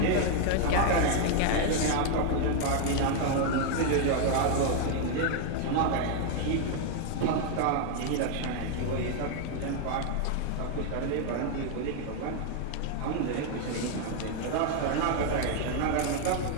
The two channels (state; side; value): different; both; correlation 0.00